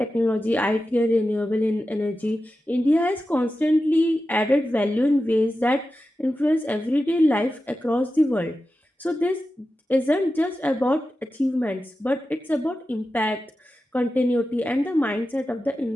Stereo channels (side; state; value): both; normal; correlation 0.92